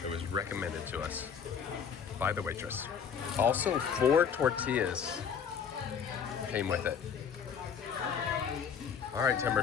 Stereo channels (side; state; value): right; quieter; 7.2 dB